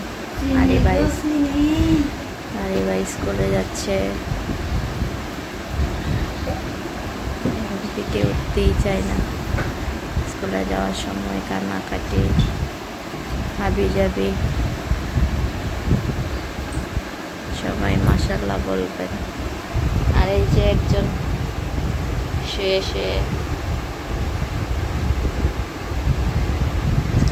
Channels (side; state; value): both; identical; correlation 1.00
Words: আরে ভাই স্কুলে যাচ্ছে, থেকে উঠতেই চায় না। স্কুলে যাওয়ার সময় কান্নাকাটি, হাবি যাবি। সবাই মাশাআল্লাহ বলবেন। আর এই যে একজন শুয়ে শুয়ে